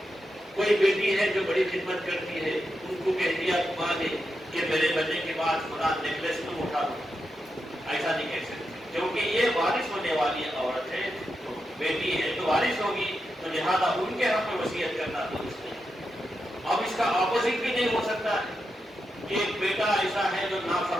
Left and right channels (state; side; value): normal; both; correlation 0.87